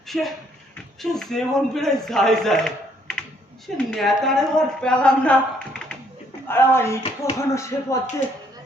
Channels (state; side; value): normal; both; correlation 0.67